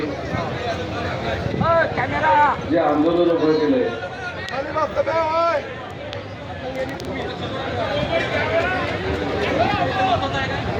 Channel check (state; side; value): identical; both; correlation 1.00